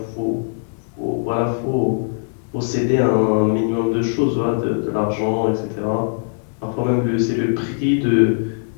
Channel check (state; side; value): silent; right; digital silence